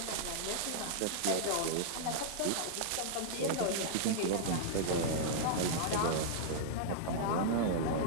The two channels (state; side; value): different; both; correlation -0.02